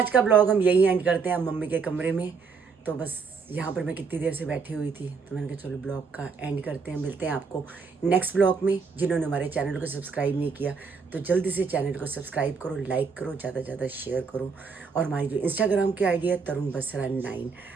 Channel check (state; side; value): quieter; left; 5.2 dB